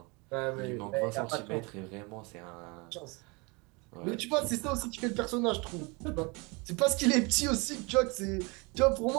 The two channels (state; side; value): quieter; left; 28.3 dB